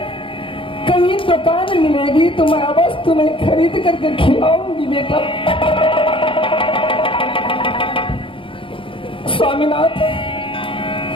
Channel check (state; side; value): late; right; 0.25 ms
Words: कहीं दुकान मिलेगी तो मैं अवश्य तुम्हें खरीद करके खिलाऊंगी बेटा। स्वामीनाथ,